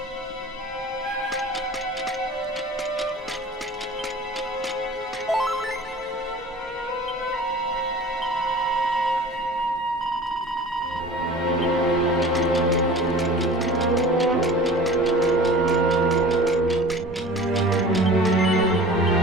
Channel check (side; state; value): both; normal; correlation 0.41